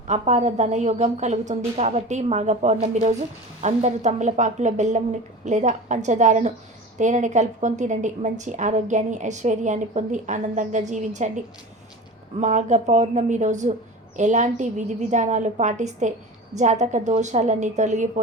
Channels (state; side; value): normal; both; correlation 0.34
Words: అపార ధనయోగం కలుగుతుంది. కాబట్టి మాఘ పౌర్ణమి రోజు అందరూ తమలపాకులో బెల్లం లేదా పంచదారను తేనెని కలుపుకొని తినండి. మంచి ఆరోగ్యాన్ని, ఐశ్వర్యాన్ని పొంది ఆనందంగా జీవించండి. మాఘ పౌర్ణమి రోజు ఎలాంటి విధి విధానాలు పాటిస్తే జాతక దోషాలన్నీ